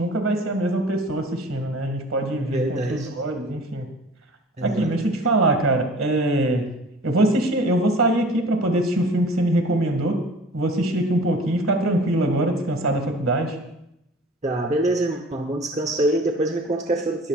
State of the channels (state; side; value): normal; both; correlation 0.46